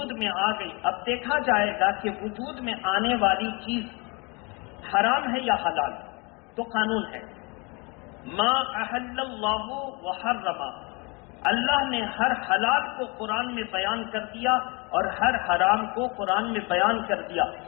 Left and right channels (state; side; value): quieter; right; 29.5 dB